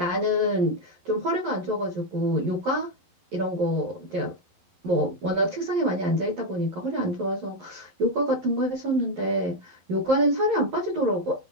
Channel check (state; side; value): late; left; 11 ms